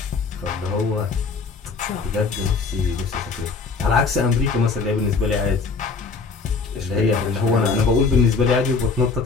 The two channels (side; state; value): right; quieter; 4.5 dB